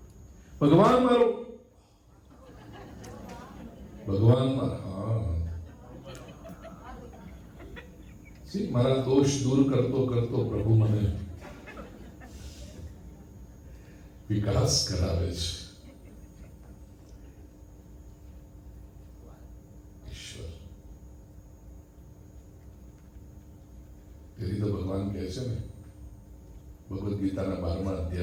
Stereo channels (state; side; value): identical; both; correlation 1.00